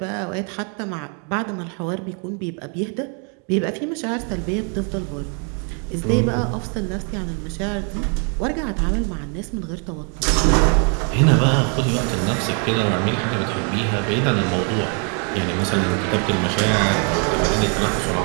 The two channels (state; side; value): quieter; left; 39.5 dB